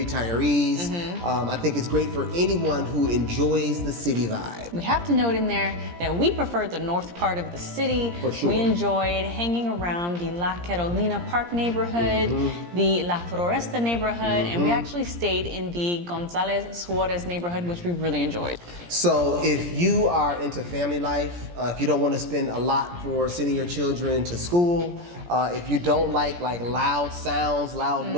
I think it's great for anyone who enjoys the city vibe. We have to note in there that we prefer the north part of the city. For sure. We enjoyed hanging around the La Carolina Park neighborhood, the La Floresta neighborhood, and we actually stayed in the Gonzalez Suarez neighborhood, which we really enjoyed. So if you are into family life, if you don't want to spend a lot for sending your children to school, if you don't like loud sounds, loud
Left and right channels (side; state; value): left; late; 17 ms